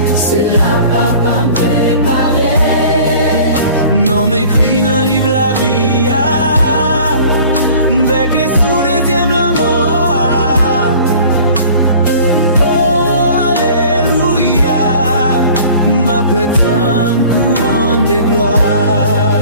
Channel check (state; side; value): inverted; both; correlation -0.47